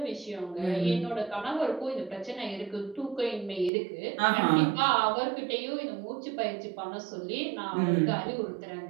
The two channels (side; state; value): left; drops out; at 3.7 s